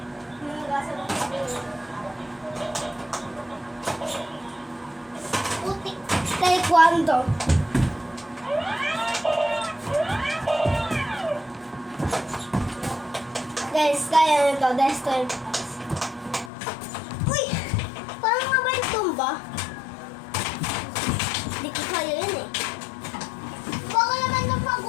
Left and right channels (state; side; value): drops out; right; at 16.5 s